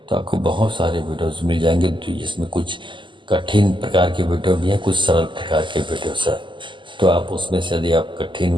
आपको बहुत सारे वीडियोस मिल जाएंगे, जिसमें कुछ कठिन प्रकार के वीडियो भी हैं, कुछ सरल प्रकार के वीडियोस हैं। तो आप उसमें से यदि आप कठिन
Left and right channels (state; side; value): late; left; 0.24 ms